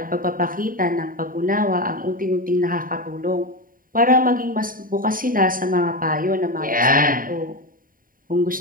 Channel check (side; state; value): left; late; 0.41 ms